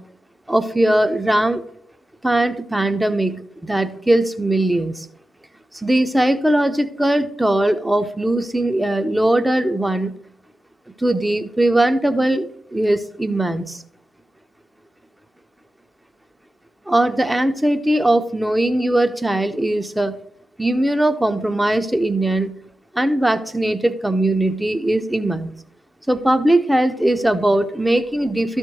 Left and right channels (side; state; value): both; normal; correlation 0.94